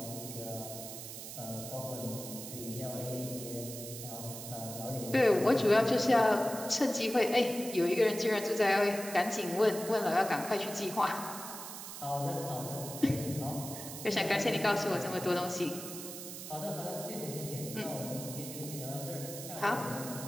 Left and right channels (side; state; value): right; noise; hiss, 10 dB below the sound